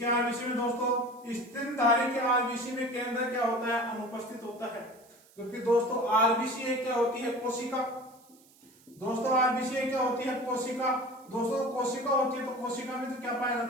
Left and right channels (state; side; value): noise; right; hiss, 28 dB below the sound